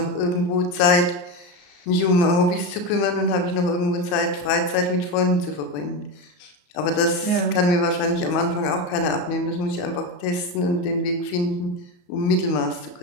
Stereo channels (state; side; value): late; right; 34 ms